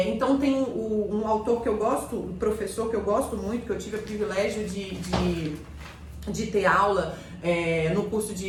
tem um autor que eu gosto, um professor que eu gosto muito, que eu tive o privilégio de ter aula no curso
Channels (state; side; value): identical; both; correlation 1.00